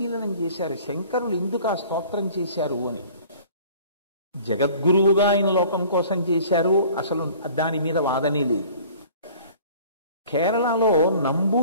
చేశారు. శంకరులు ఎందుకు ఆ స్తోత్రం చేశారు అని. జగద్గురువుగా ఆయన లోకం కోసం చేశారు, అసలు దాని మీద వాదనే లేదు. కేరళలో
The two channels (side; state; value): both; inverted; correlation -0.49